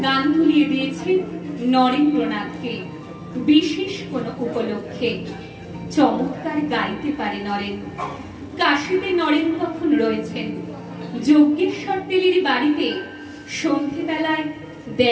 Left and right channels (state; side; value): identical; both; correlation 1.00